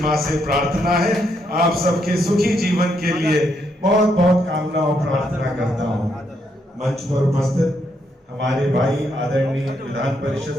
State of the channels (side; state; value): both; normal; correlation 0.76